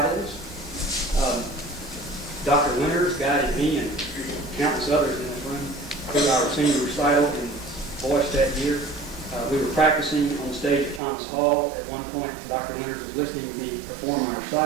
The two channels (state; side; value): drops out; left; at 11.0 s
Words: Dr. Winters guided me and countless others in this room for our senior recital in voice that year. We were practicing on the stage at Thomas Hall. At one point, Dr. Winters was listening to me perform my